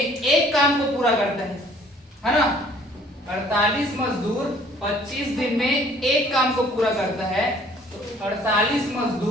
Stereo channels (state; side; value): normal; both; correlation 0.57